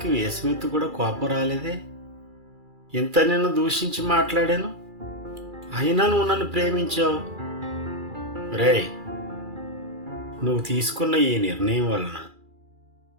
వేసమెత్తు కూడా కోపం రాలేదే. ఇంత నిన్ను దూషించి మాట్లాడాను, అయినా నువ్వు నన్ను ప్రేమించావు. రేయ్, నువ్వు తీసుకున్న ఈ నిర్ణయం వలన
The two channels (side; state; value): left; late; 2.4 ms